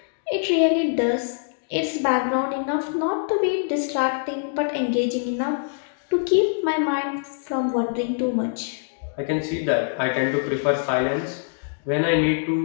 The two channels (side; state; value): right; silent; digital silence